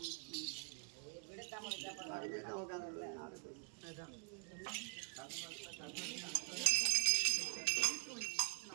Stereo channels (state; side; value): quieter; left; 34.9 dB